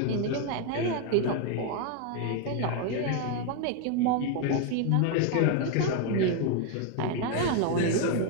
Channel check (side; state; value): both; different; correlation 0.01